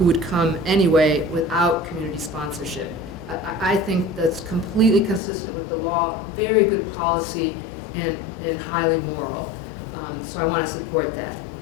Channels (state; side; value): drops out; right; at 5.2 s